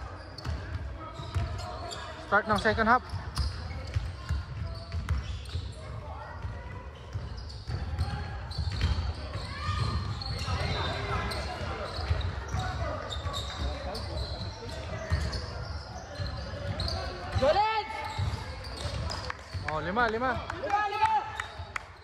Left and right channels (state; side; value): identical; both; correlation 1.00